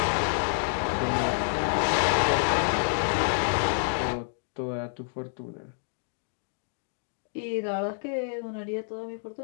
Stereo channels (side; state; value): right; silent; digital silence